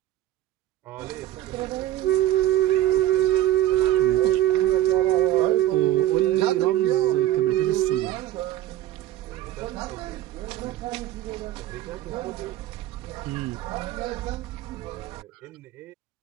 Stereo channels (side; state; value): left; quieter; 13.8 dB